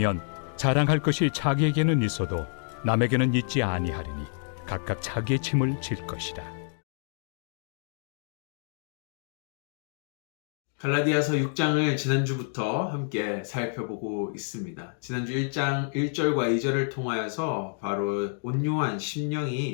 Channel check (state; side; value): silent; right; digital silence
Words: 자랑할 것이 자기에게는 있어도 남에게는 있지 아니하리니 각각 자기의 짐을 질 것이라. 갈라디아서 6장을 지난주부터 함께 살펴보고 있습니다. 지난주 1장 1절과 2절을 통하여서 바로 온유한